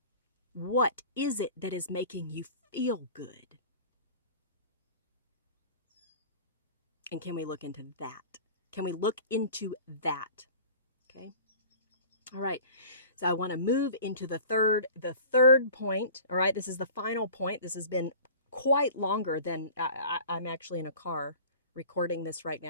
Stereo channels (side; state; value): both; inverted; correlation -0.42